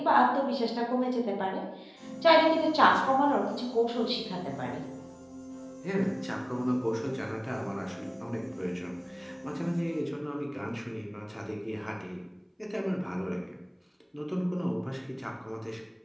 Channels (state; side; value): identical; both; correlation 1.00